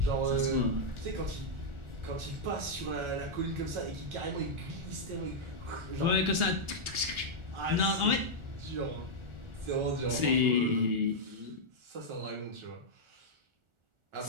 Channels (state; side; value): late; left; 1.4 ms